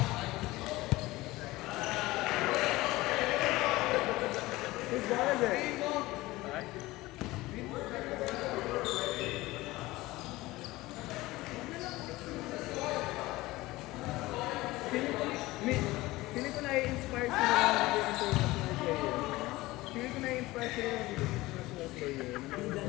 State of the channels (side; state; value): right; quieter; 19.2 dB